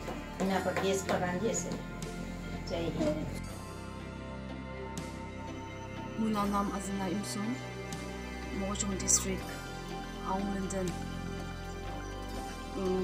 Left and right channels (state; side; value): identical; both; correlation 1.00